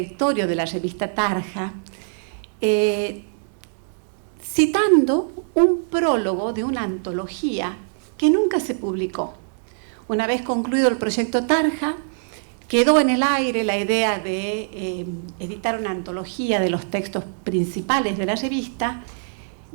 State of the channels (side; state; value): left; silent; digital silence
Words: de la revista Tarja, citando un prólogo de una antología que nunca se publicó. Una vez concluido el proyecto Tarja, quedó en el aire la idea de editar una antología de los textos principales de la revista.